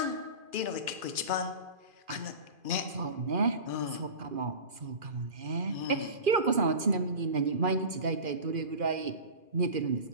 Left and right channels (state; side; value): late; left; 2.4 ms